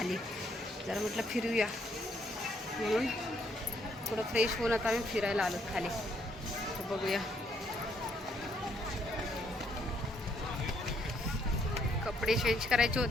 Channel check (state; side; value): normal; both; correlation 0.70